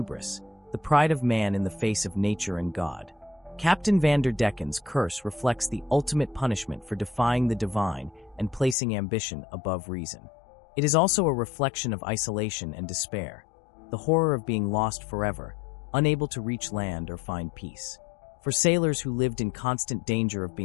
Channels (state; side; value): drops out; right; at 8.8 s